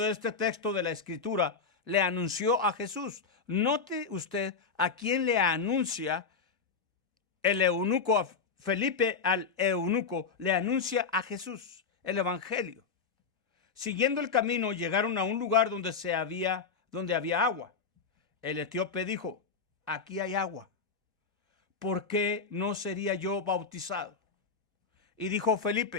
este texto de la Escritura, le anunció a Jesús. Note usted a quién le anuncia el eunuco, a Felipe al eunuco, le anuncia a Jesús, el evangelio. Siguiendo el camino, llegaron a un lugar donde había agua. El etíope dijo: aquí hay agua, ¿por qué no sería yo bautizado? Y dijo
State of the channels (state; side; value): quieter; right; 5.1 dB